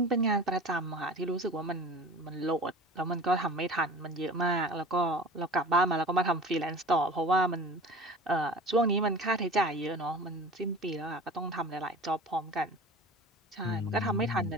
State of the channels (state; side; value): normal; both; correlation 0.38